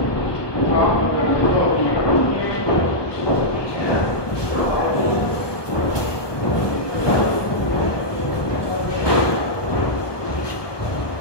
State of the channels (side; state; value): right; late; 1.2 ms